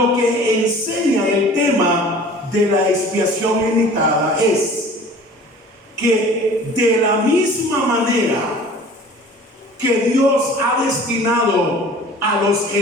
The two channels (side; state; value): both; normal; correlation 0.45